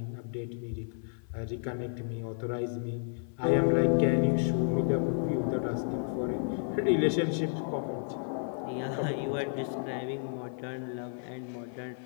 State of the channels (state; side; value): silent; right; 57 dB below the other